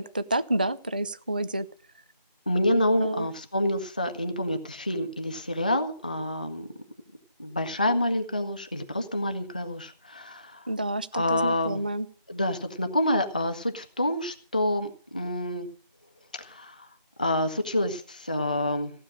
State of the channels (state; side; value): inverted; both; correlation -0.75